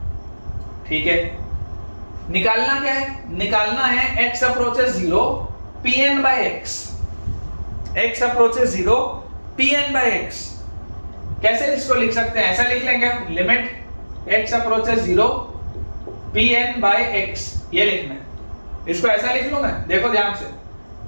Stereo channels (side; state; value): both; inverted; correlation -1.00